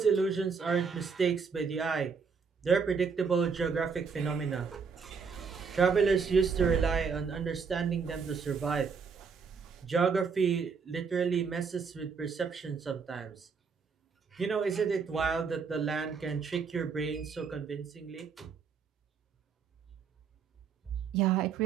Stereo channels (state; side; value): quieter; left; 5.7 dB